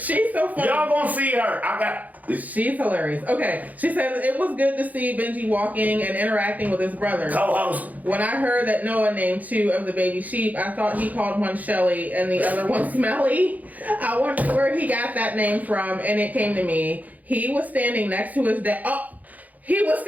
so funny. Y'all gonna see her. She's hilarious. Okay. She says, it was good to see Benji walking and interacting with his brother. Co-host. When I heard that Noah named 2 of the baby sheep, I thought he called one Shelly and the other one Smelly. I wondered where he got that name from, and it came to me. He was standing next to his dad. He was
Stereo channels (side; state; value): left; late; 0.079 ms